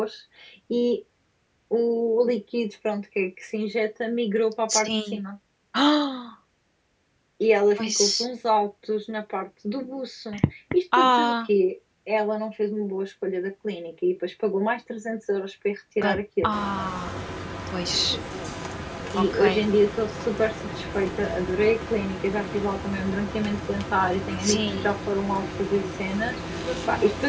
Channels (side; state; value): both; identical; correlation 1.00